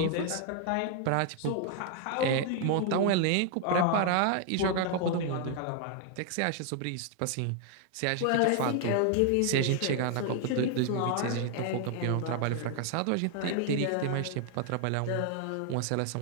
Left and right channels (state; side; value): different; both; correlation 0.00